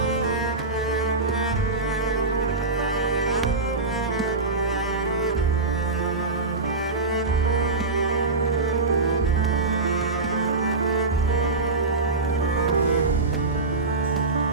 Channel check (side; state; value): left; quieter; 3.6 dB